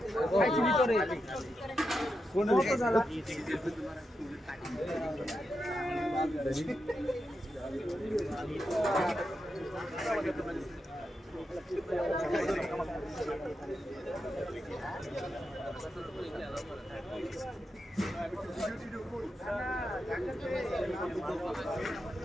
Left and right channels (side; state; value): both; normal; correlation 0.87